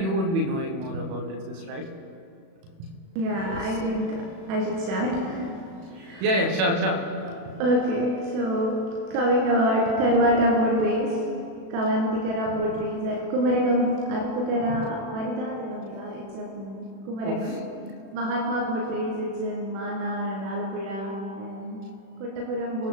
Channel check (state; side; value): late; left; 36 ms